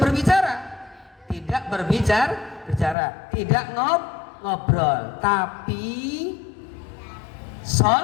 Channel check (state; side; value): drops out; right; at 3.0 s